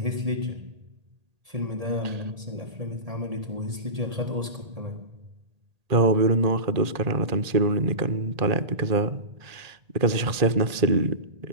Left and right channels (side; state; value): left; late; 1.8 ms